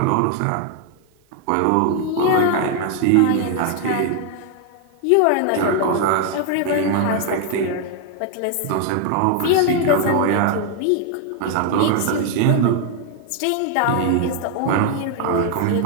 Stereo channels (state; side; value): different; both; correlation 0.00